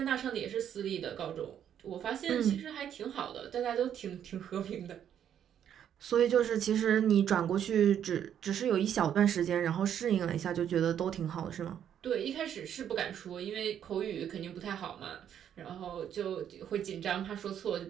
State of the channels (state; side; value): quieter; left; 9.5 dB